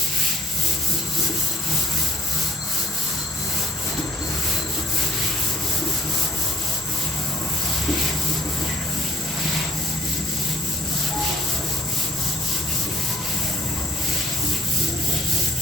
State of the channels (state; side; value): normal; both; correlation 0.65